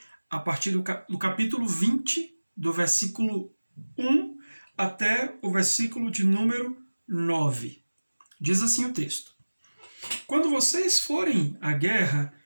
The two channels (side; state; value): both; inverted; correlation -1.00